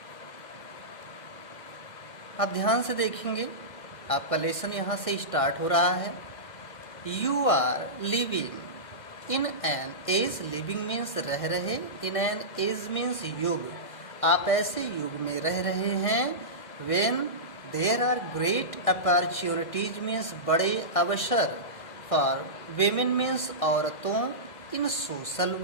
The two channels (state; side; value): late; right; 1.6 ms